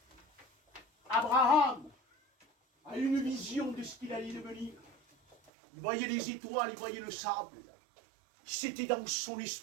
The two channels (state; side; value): drops out; left; at 5.4 s